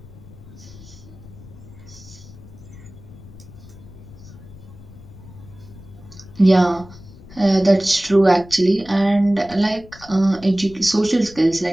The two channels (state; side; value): noise; left; rumble, 19 dB below the sound